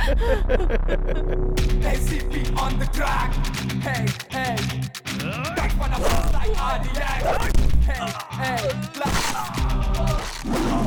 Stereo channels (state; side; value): identical; both; correlation 1.00